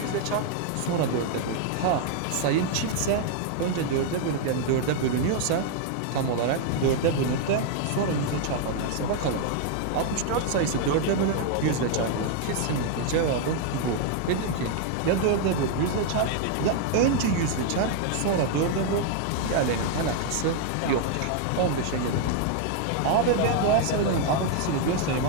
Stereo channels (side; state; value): both; different; correlation 0.00